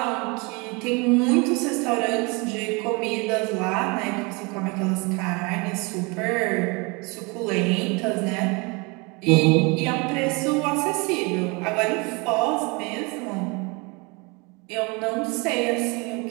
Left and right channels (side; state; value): left; quieter; 28.7 dB